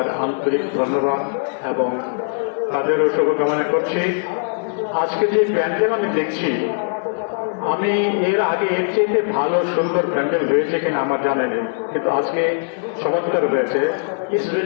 আন্তরিক ধন্যবাদ এবং তাদেরও শুভকামনা করছি। আজকে যে প্যান্ডেল আমি দেখছি, আমি এর আগে এর চেয়ে ভালো সুন্দর প্যান্ডেল হয়েছে কিনা আমার জানা নেই, কিন্তু আজকে চমৎকার হয়েছে। It's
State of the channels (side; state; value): right; silent; digital silence